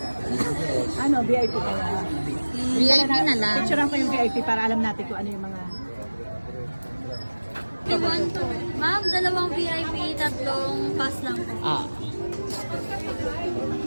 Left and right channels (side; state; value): both; inverted; correlation -1.00